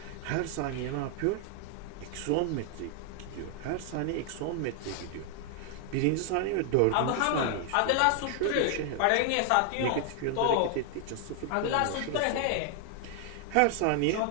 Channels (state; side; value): different; both; correlation 0.00